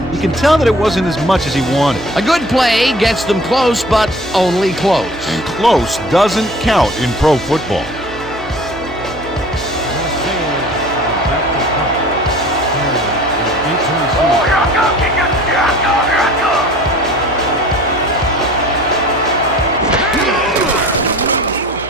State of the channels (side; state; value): right; noise; hum, 16 dB below the sound